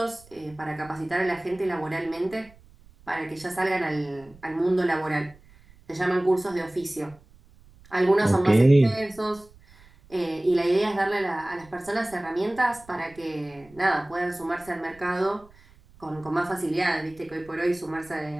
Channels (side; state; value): right; noise; rumble, 26 dB below the sound